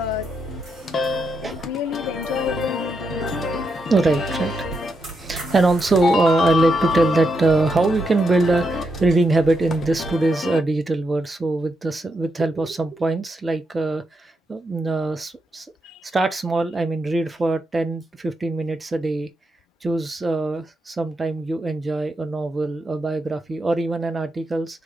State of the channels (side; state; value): both; normal; correlation 0.82